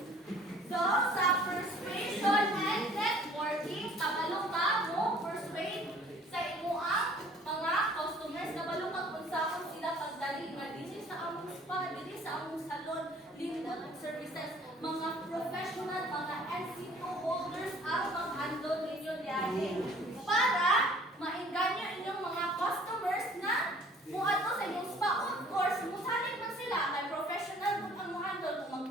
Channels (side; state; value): both; normal; correlation 0.53